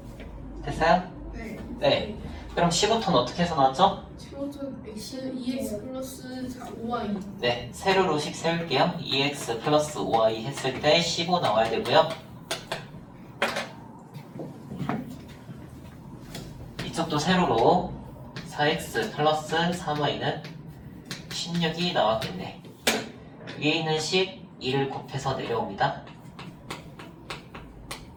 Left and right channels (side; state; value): both; identical; correlation 1.00